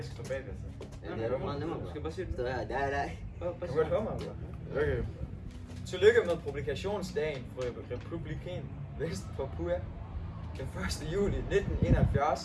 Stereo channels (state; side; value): identical; both; correlation 1.00